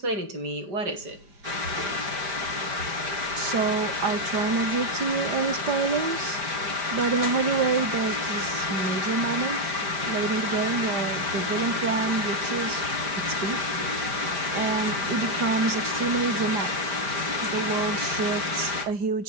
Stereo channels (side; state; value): left; late; 5.0 ms